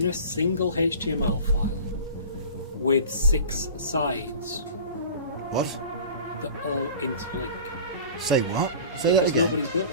a single HTML file with 6 sides What? that all interlink. Say what? Say Because that again. nobody's built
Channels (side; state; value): both; inverted; correlation -0.40